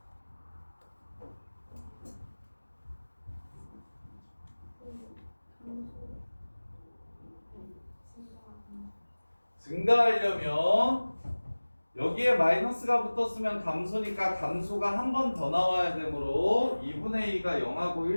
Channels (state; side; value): inverted; both; correlation -1.00